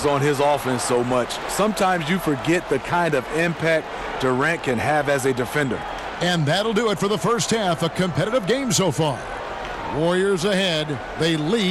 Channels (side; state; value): both; identical; correlation 1.00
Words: on his offense so much. Sometimes you forget the kind of impact Durant can have as a defender. And that'll do it for the first half. A competitive game so far. Warriors ahead. They